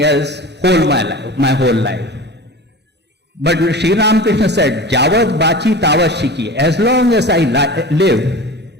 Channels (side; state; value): both; normal; correlation 0.34